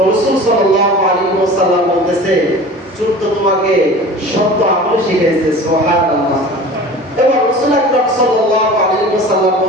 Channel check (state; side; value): normal; both; correlation 0.39